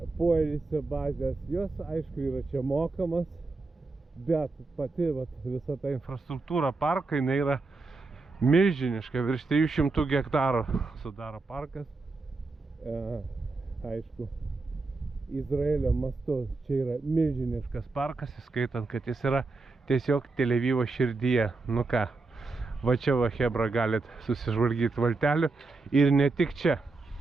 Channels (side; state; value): left; quieter; 3.7 dB